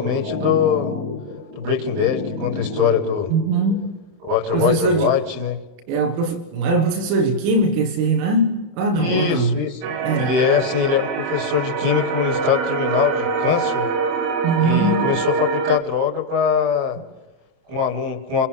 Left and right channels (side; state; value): left; late; 29 ms